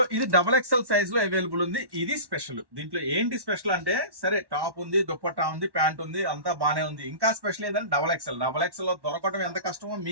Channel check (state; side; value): late; left; 1.1 ms